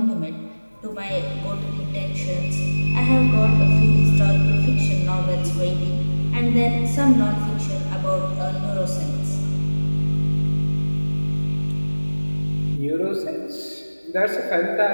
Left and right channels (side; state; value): both; inverted; correlation -1.00